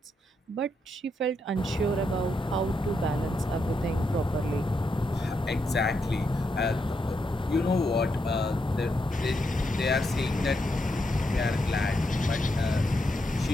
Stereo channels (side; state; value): both; normal; correlation 0.82